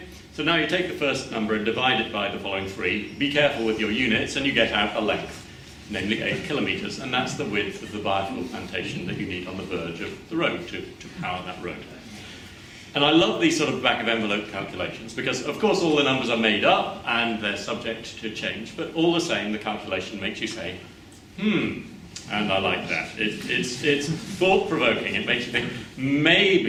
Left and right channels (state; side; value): identical; both; correlation 1.00